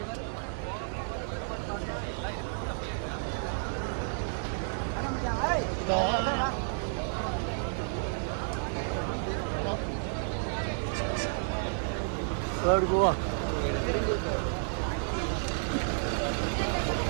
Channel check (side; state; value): left; silent; 57 dB below the other